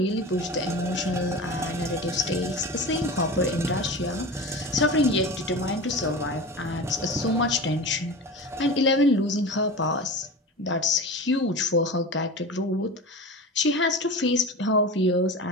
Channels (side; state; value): both; normal; correlation 0.31